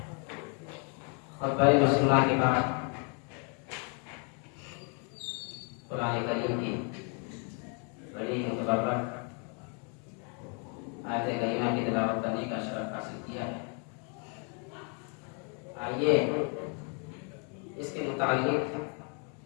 خطبہ مسلمہ کے بعد قرآن کریم کی بڑی متبرک آیت کریمہ کی تلاوت کرنے کا شرف حاصل کیا ہے۔ آئیے اس کے متعلق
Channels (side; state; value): right; quieter; 38.3 dB